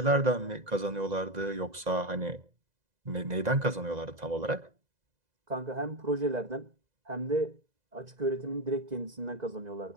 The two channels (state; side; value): late; left; 2.0 ms